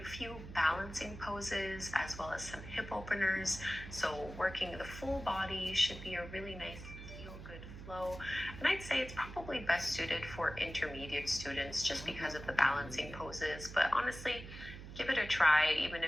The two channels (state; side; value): noise; right; hum, 12 dB below the sound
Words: a few balancing poses as well as some hip openers. So working the full body should be a really nice feel-good flow. And I'd say it's probably best suited for intermediate students just because of the balancing poses. But honestly, give it a try, even